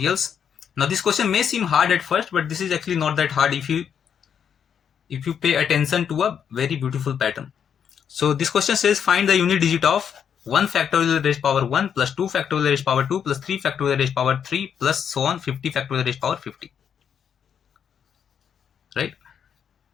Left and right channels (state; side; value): quieter; right; 8.0 dB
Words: Now, this question may seem hard at first, but this is actually not that hard if you pay attention to a very beautiful pattern. So this question says find the unit digit of 1 factorial raised power 1 plus 2 factorial raised power 2 plus 3 factorial raised power 3 plus so on 50 factorial raised power 50. Right?